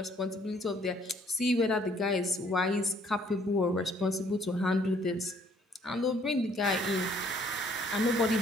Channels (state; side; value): normal; both; correlation 0.63